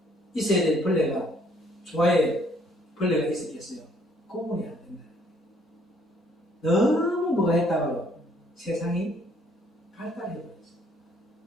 있어야 될 벌레가 조화에 벌레가 있었겠어요? 구분이 안 된다. 너무 뭐가 했다가요 세상이 발달해버렸어요.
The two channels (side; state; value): both; normal; correlation 0.64